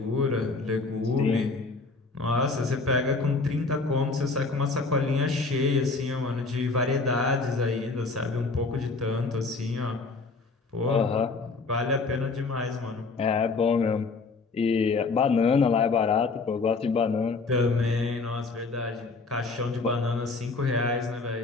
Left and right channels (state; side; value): quieter; right; 4.0 dB